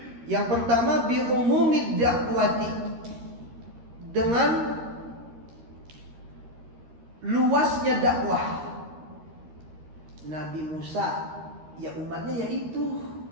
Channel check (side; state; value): left; late; 13 ms